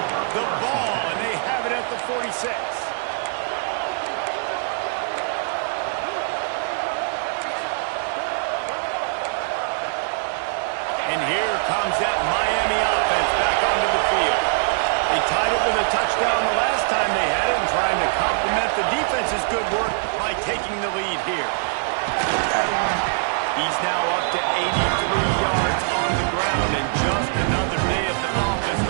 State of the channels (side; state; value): left; silent; 64 dB below the other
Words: the ball, and they have it at the 46. And here comes that Miami offense back onto the field. They tied it with a touchdown the last time they had it and trying to complement the defense's good work by taking the lead here. He's now up to 83 yards on the ground and just another day at the office